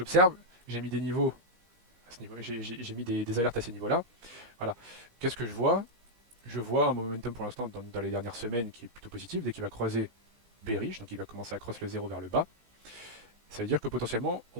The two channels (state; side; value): late; left; 17 ms